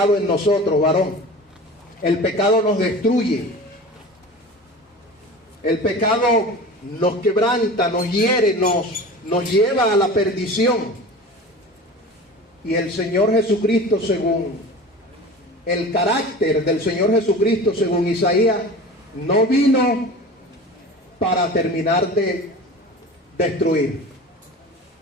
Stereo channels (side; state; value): both; normal; correlation 0.36